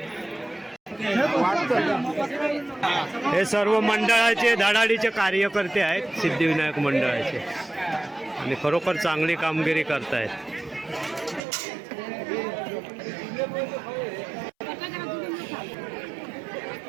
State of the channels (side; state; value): left; drops out; at 11.4 s